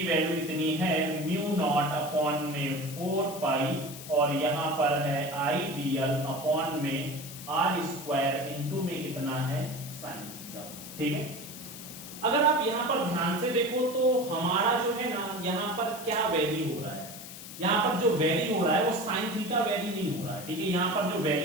वैल्यू कितनी है म्यू नॉट अपॉन में 4 पाई, और यहाँ पर है आइडियल अपॉन में r स्क्वायर इनटू में कितना है sin थीटा। ठीक है, अगर आप यहाँ पर ध्यान से देखो तो हमारा जो है ना यहाँ पर क्या वैल्यू हो रहा है, यहाँ पर जो वैल्यू हो रहा है वो sin थीटा वैल्यू नहीं हो रहा है। ठीक है, यहाँ पर जो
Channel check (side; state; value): left; noise; hiss, 13 dB below the sound